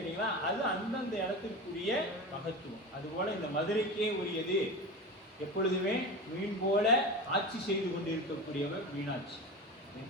அது அந்தந்த இடத்திற்குரிய மகத்துவம். அதுபோல இந்த மதுரைக்கே உரியது எப்பொழுதுமே மீன் போல ஆட்சி செய்து கொண்டு இருக்கக்கூடியவர் மீனாட்சி.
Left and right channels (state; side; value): normal; both; correlation 0.27